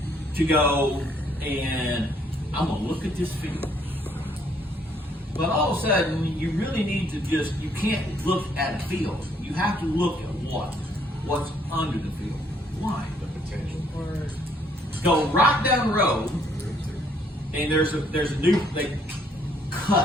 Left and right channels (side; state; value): both; normal; correlation 0.66